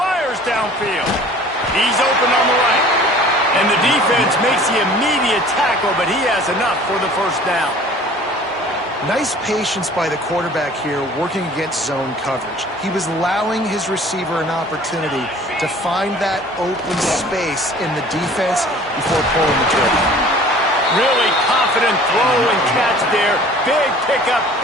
downfield. He's open on the right. And the defense makes the immediate tackle, but he has enough for the 1st down. Nice patience by the quarterback here working against zone coverage. He was allowing his receiver an opportunity to find that open space in the defense before pulling the trigger. Really confident throw and catch there. Big pickup,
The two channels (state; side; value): normal; both; correlation 0.48